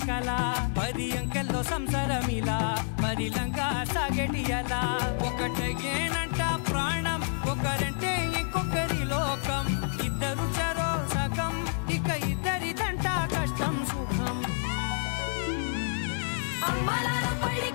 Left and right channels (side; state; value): right; silent; digital silence